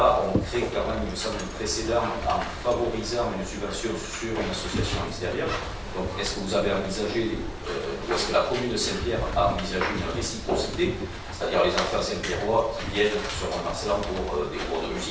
on crée quand même, il me semble, un précédent en favorisant une subvention sur une association extérieure. Donc, est-ce que vous avez envisagé, ou est-ce que la commune de Saint-Pierre a envisagé une réciprocité, c'est-à-dire les enfants saint-pierrois qui viennent sur Mont-de-Marsan pour des cours de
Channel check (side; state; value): both; identical; correlation 1.00